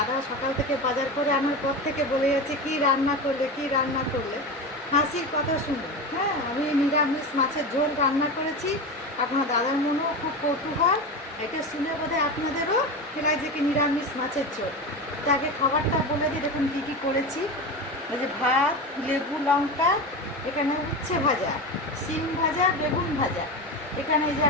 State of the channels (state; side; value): normal; both; correlation 0.23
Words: সকাল থেকে বাজার করে আনার পর থেকে বলে যাচ্ছে কী রান্না করলে কী রান্না করলে। হাসির কথা শুনুন। হ্যাঁ, আমি নিরামিষ মাছের ঝোল রান্না করেছি। আপনার দাদার মনেও খুব কৌতূহল। এটা শুনে বোধহয় আপনাদেরও লাগছে কি নিরামিষ মাছের ঝোল। তাকে খাবারটা বলে দিই, দেখুন কী কী করেছি। এই যে ভাত, লেবু, লঙ্কা, এখানে উচ্ছে ভাজা, শিম ভাজা, বেগুন ভাজা, এখানে এই যে